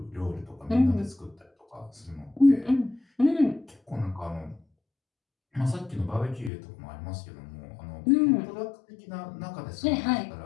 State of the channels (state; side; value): drops out; right; at 6.5 s